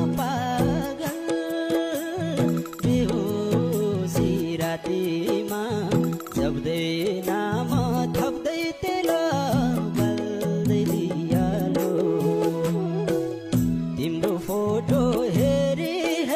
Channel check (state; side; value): identical; both; correlation 1.00